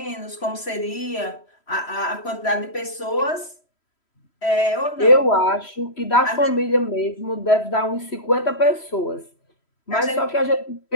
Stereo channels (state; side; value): late; right; 3.1 ms